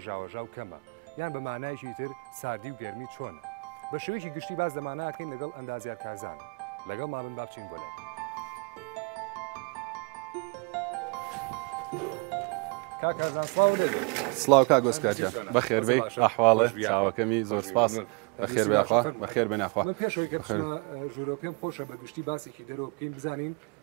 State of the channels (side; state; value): left; quieter; 32.7 dB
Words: سڵاو کا گۆسکارجە بەخێر بێ ئەحواڵە چاوەکەمی زۆر سپاس بەخێر بێخوا بەخێر بێناخوا ژوورۆ پێم خۆشە بەگشتی باسێکی دەرەوە بکەین بزانین